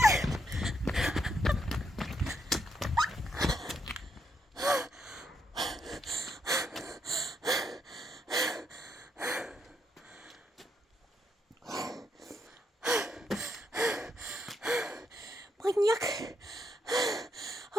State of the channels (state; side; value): normal; both; correlation 0.78